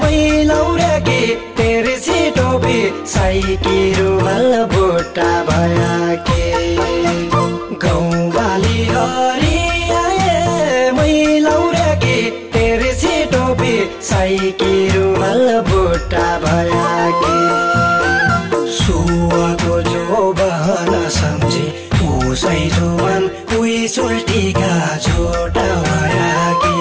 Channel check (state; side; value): identical; both; correlation 1.00